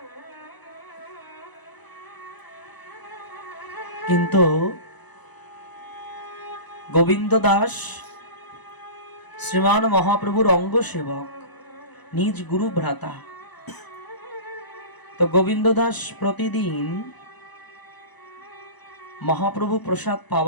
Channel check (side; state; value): right; late; 1.0 ms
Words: কিন্তু গোবিন্দ দাস শ্রীমান মহাপ্রভুর অঙ্গ সেবক, নিজ গুরু ভ্রাতা। তো গোবিন্দ দাস প্রতিদিন মহাপ্রভু প্রসাদ